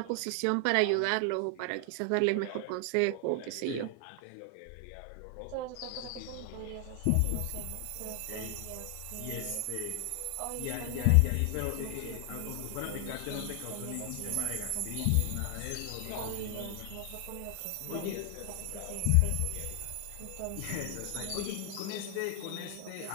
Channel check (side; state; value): both; different; correlation 0.00